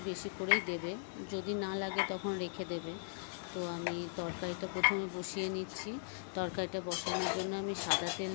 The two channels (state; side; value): silent; right; 52 dB below the other